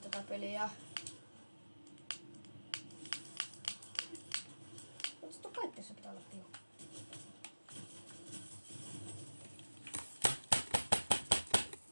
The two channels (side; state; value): both; inverted; correlation -1.00